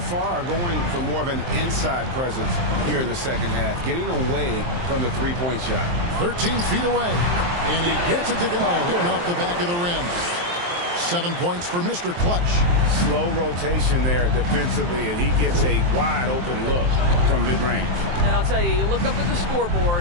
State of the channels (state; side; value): late; left; 23 ms